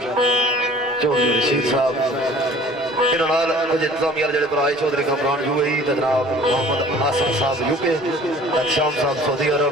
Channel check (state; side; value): normal; both; correlation 0.49